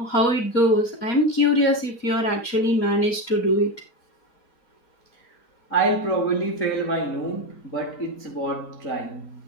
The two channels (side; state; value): right; late; 4.2 ms